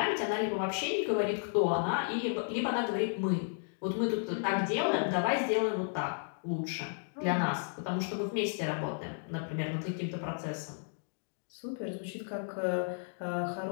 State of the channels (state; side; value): silent; right; digital silence